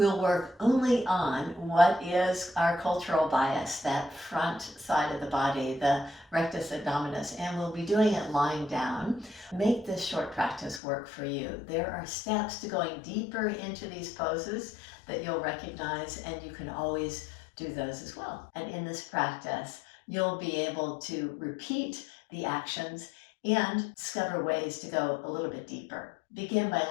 work only on what is our cultural bias, that front side of the body, the rectus abdominis, and we'll be doing it lying down. Make this short practice work for you. There are steps to going deeper into these poses that you'll recognize, and you can always do those as well. And in this practice, you'll be able to repeat the actions and discover ways to go a little bit deeper. Begin by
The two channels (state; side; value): drops out; right; at 10.8 s